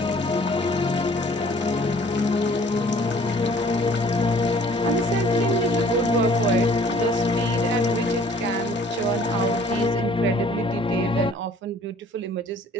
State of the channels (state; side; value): normal; both; correlation 0.55